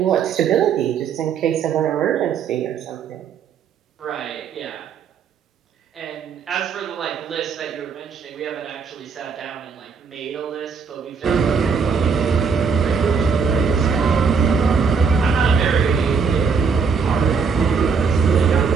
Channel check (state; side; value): quieter; left; 5.7 dB